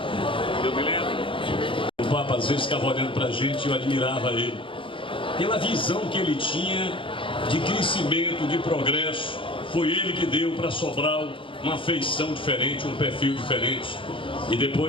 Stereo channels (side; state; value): right; late; 0.25 ms